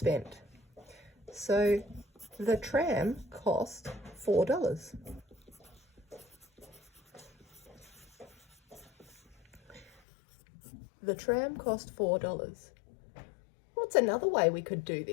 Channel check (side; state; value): right; drops out; at 9.9 s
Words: So the tram cost $4. The tram cost $4. What's another way we could do